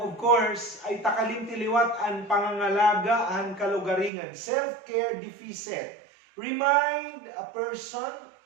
of course, ay takalimtiliwat ang pangangalaga ang kalugaringan. Self-care deficit. Remind a person,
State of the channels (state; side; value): drops out; left; at 4.1 s